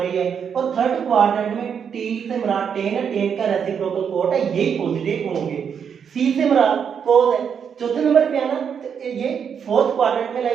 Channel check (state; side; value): quieter; left; 7.3 dB